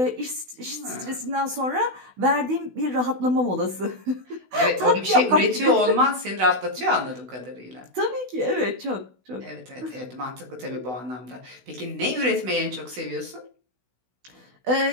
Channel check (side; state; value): left; late; 16 ms